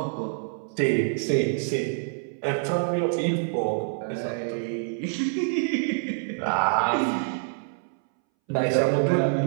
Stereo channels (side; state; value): left; silent; 61 dB below the other